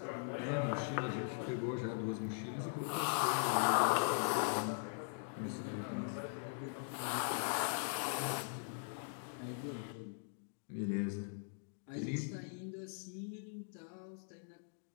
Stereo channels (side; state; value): right; silent; digital silence